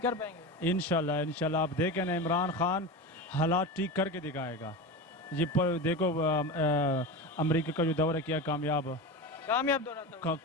کر پائیں گے؟ انشاءاللہ آپ دیکھیں نا عمران خان حالات ٹھیک کر کے دکھائے گا. یہ دیکھو امریکہ کا جو دورہ کیا کامیاب دورہ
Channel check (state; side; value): normal; both; correlation 0.25